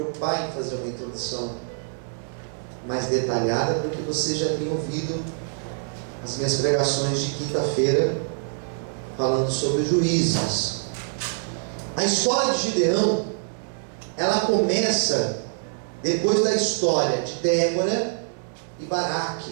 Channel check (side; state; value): left; silent; digital silence